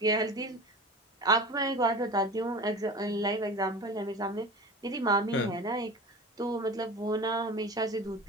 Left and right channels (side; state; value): both; normal; correlation 0.34